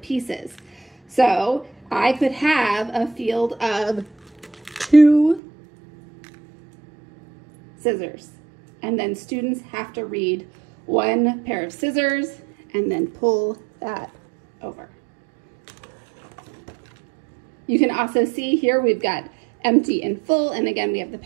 So I could have a field of 2 scissors, and then students have to read 1 pair of scissors and then pull that over. You can also see here we've got empty and full, and again we have the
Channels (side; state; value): left; drops out; at 5.4 s